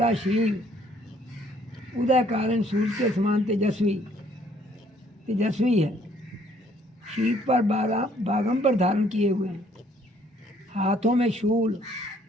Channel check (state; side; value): normal; both; correlation 0.63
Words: शरीर, उदय कारण सूर्य के समान तेजस्वी है। शीत पर बागंबर धारण किए हुए हैं, हाथों में शूल,